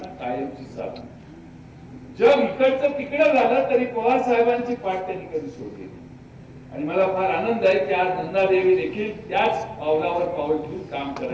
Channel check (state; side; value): identical; both; correlation 1.00